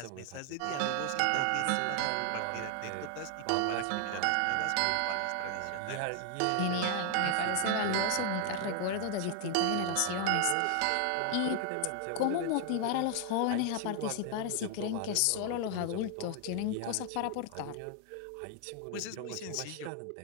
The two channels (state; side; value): different; both; correlation 0.00